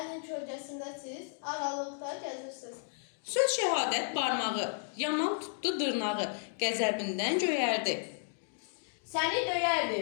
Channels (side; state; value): right; silent; digital silence